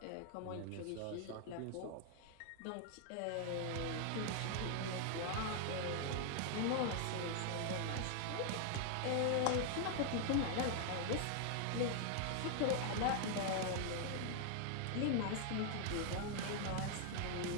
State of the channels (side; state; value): both; different; correlation 0.00